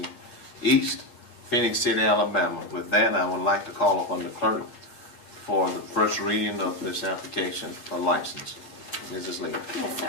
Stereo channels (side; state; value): right; late; 8.5 ms